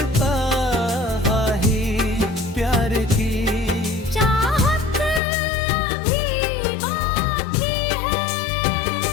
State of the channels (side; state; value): right; drops out; at 5.2 s